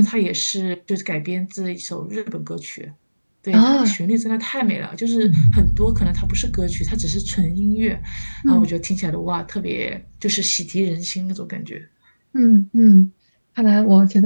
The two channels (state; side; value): inverted; both; correlation -1.00